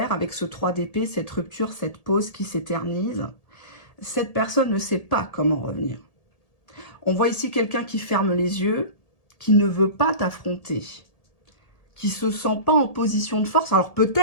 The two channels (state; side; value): late; right; 1.7 ms